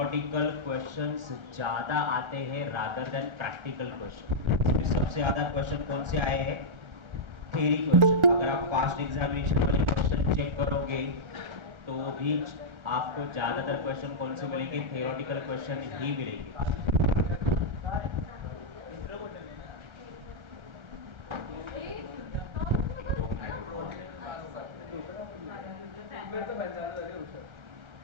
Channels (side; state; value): left; late; 1.4 ms